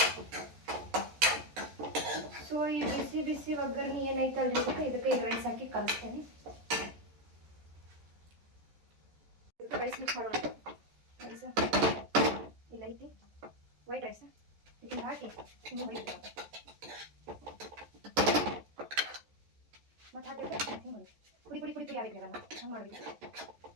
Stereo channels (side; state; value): left; late; 14 ms